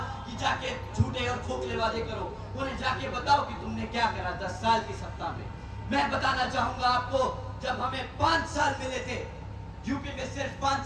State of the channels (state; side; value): identical; both; correlation 1.00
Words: कि जाके झूठे और खोखले वादे करो, उन्हें जाके बताओ कि तुमने क्या करा 10 साल की सत्ता में। मैं बताना चाहूंगा आपको, जब हमें 5 साल मिले थे, यूपी में सिर्फ 5